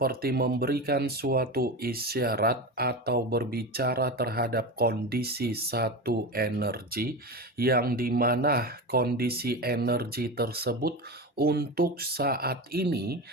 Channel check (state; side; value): normal; both; correlation 0.23